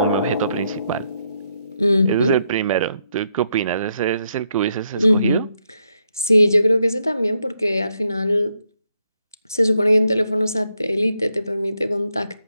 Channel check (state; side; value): inverted; both; correlation -0.78